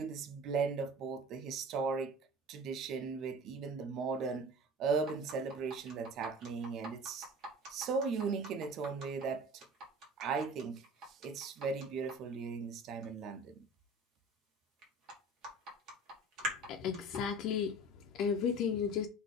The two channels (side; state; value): both; normal; correlation 0.40